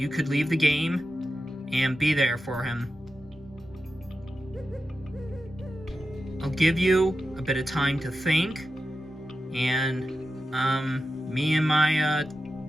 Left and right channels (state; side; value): normal; both; correlation 0.91